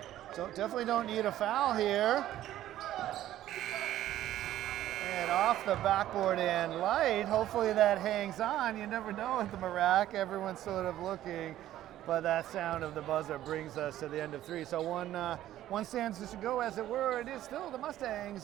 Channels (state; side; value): quieter; left; 13.2 dB